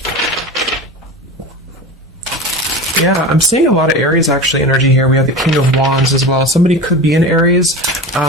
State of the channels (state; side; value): normal; both; correlation 0.30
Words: Yeah, I'm seeing a lot of Aries actually energy here. We have the King of Wands as well. Somebody could be in Aries.